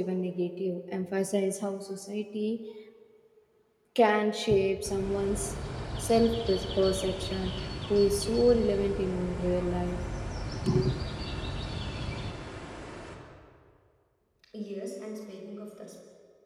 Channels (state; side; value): identical; both; correlation 1.00